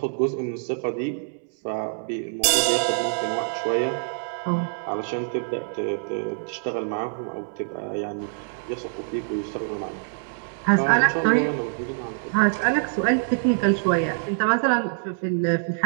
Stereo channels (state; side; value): silent; left; digital silence